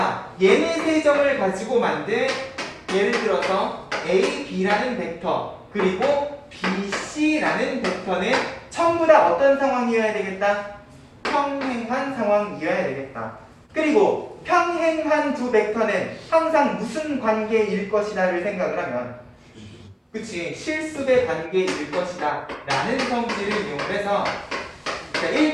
얘네 세 점을 가지고 만든, 예를 들어서 A, B라는 벡터 그리고 B, C라는 벡터는 전부 다 어떤 상황이어야 되겠다? 평행한 상황이어야 되겠다. 그리고 평행한 두 벡터는 항상 무슨 관계일 것이다를 생각을 하면, 그치, 실수배 관계일 것이다 라는 성질을 이용해서, 자,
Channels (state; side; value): identical; both; correlation 1.00